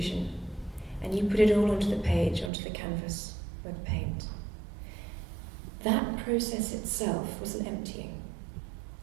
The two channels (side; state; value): left; drops out; at 2.5 s